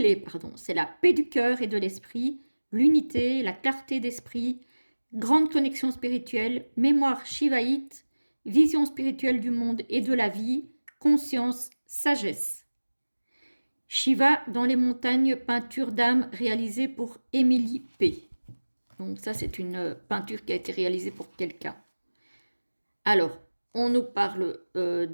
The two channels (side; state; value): both; inverted; correlation -1.00